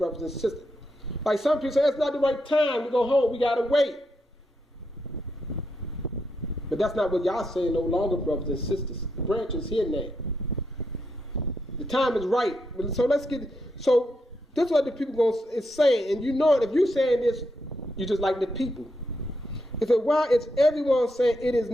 and sisters. Like some people say, it's not the right time. We go home. We got to wait. But that's not what Yah saying no longer, brothers and sisters. The branch is here now. The time is right. So let's get. So this is what the people is saying, and you know it. If you're saying this, you just like the people. It said, why is everyone saying it is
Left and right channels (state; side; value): normal; both; correlation 0.82